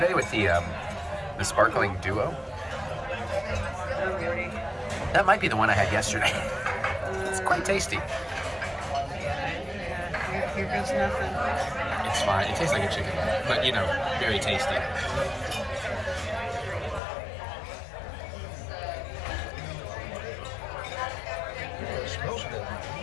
with the sparkling duo? Oh, really? That might be the one I had yesterday. It's quite tasty. Yeah, here goes nothing. It's fine. It tastes like a chicken, but you know, very tasty. It smells good.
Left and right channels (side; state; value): right; drops out; at 17.0 s